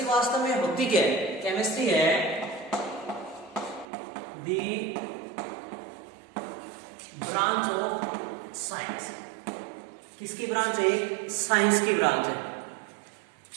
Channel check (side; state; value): left; drops out; at 3.9 s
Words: वास्तव में होती क्या है? केमिस्ट्री है दी ब्रांच ऑफ साइंस. किसकी ब्रांच है? साइंस की ब्रांच है.